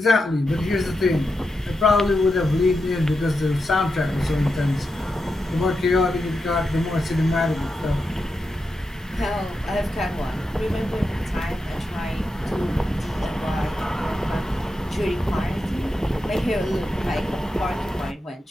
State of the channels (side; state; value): both; normal; correlation 0.88